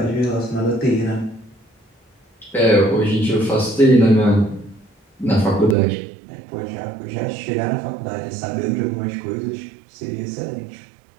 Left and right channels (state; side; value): drops out; left; at 5.8 s